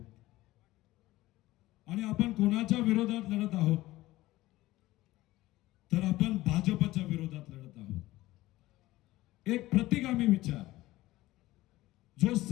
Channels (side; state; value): right; quieter; 17.4 dB